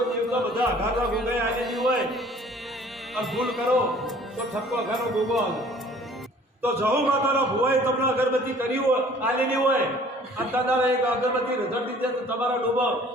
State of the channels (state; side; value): normal; both; correlation 0.52